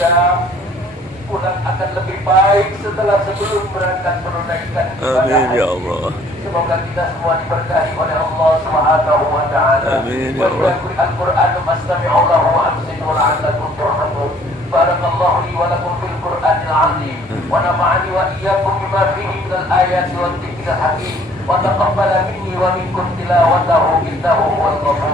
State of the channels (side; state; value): both; normal; correlation 0.57